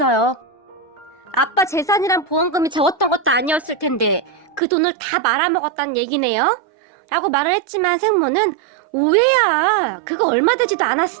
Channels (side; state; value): left; drops out; at 4.6 s